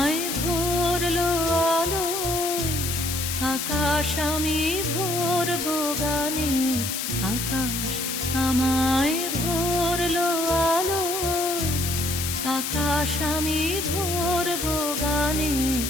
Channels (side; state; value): left; noise; hiss, 3 dB below the sound